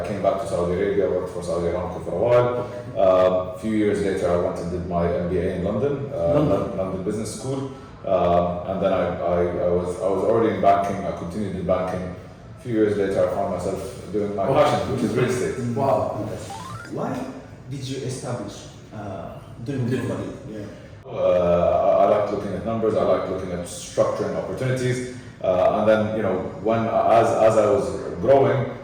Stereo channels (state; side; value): identical; both; correlation 1.00